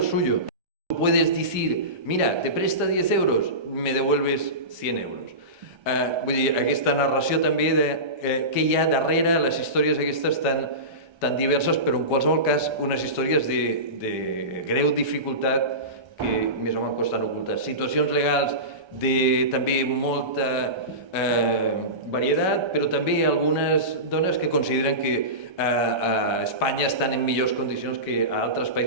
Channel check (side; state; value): left; late; 1.3 ms